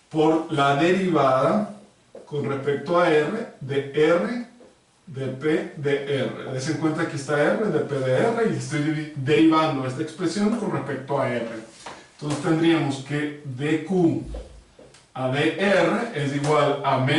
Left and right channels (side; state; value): both; identical; correlation 1.00